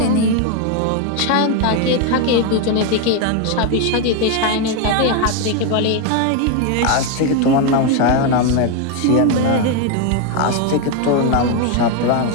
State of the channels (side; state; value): both; different; correlation 0.01